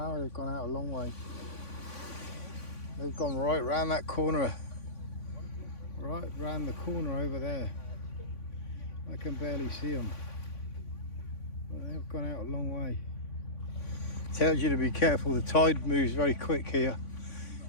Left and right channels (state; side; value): late; right; 3.5 ms